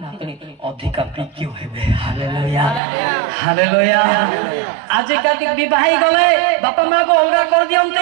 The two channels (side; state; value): left; drops out; at 2.8 s